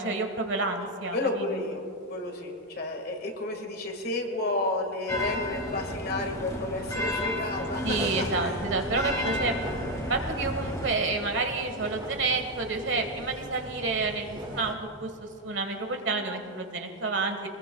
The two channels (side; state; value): both; normal; correlation 0.06